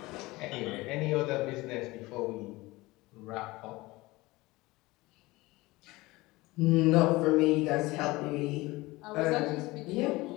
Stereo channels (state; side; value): quieter; right; 20.9 dB